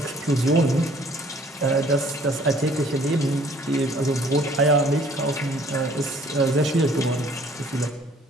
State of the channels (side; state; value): both; normal; correlation 0.57